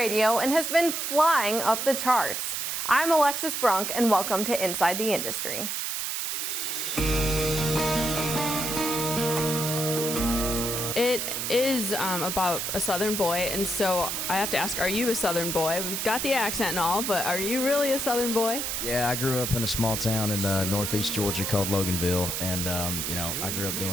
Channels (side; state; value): right; noise; hiss, 2 dB below the sound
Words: and has been flying up the charts. I'm Alexis Brunk, and welcome to Inside the Industry. It is about a Southern boy, and so I have to ask, are you a Southern boy? We've got the accent and all, but are you really a Southern boy? Yeah, I grew up in a small town in northeast Georgia called Loganville, and I grew up